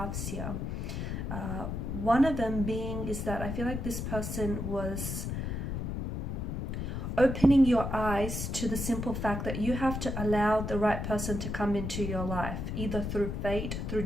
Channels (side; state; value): left; noise; rumble, 3 dB below the sound